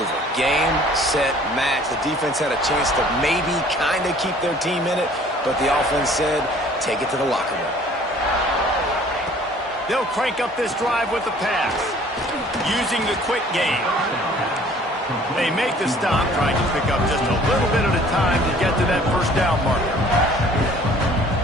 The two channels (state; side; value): normal; both; correlation 0.53